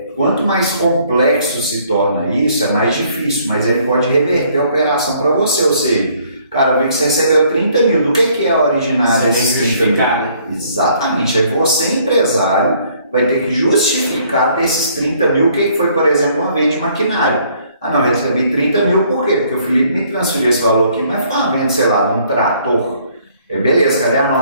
quanto mais complexo se torna isso, é mais difícil, mas ele pode reverter a operação para você, ou seja, cara, eu vi que você recebeu 30 mil, do que é a originária desses 30 mil? Exatamente, aí você, empresário, vai ter que justificar desses 30 mil o que foi, por exemplo, uma venda de maquinário. Ah não, eu recebi 30 mil, por quê? Porque o Felipe me transferiu esse valor aqui, mas foi uma venda, sei lá, de um trator. Beleza, cadê a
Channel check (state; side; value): inverted; both; correlation -0.63